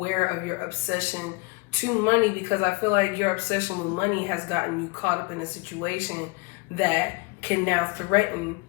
of your obsession to money, because I feel like your obsession with money has gotten you caught up in a situation that can now threaten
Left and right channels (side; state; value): right; quieter; 27.9 dB